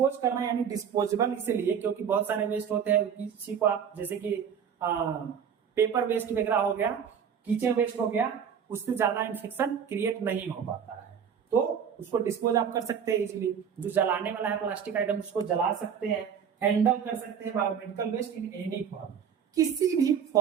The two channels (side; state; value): left; quieter; 7.6 dB